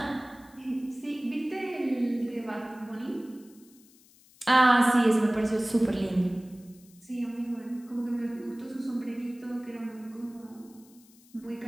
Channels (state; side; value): noise; left; hiss, 27 dB below the sound